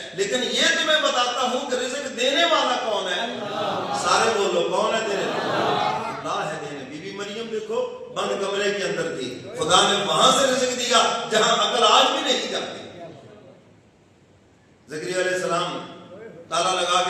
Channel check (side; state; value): both; identical; correlation 1.00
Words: لیکن یہ تمہیں بتاتا ہوں کہ رزق دینے والا کون ہے؟ سارے بولو کون ہے دینے والا؟ اللہ ہے دینے. بی بی مریم دیکھو بند کمرے کے اندر تھی, خدا نے وہاں سے رزق دیا جہاں عقل آج بھی نہیں جاتی. زکریا علیہ السلام تالا لگا